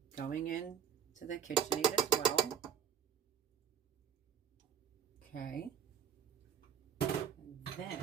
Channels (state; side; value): quieter; left; 8.6 dB